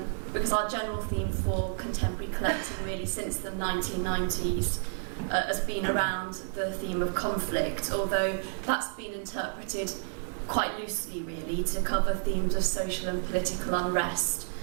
because our general theme for contemporary collecting really since the 1990s has been around the theme of conflict, although that's been interpreted quite loosely really to cover themes of social and political unrest,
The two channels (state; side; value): silent; left; 56 dB below the other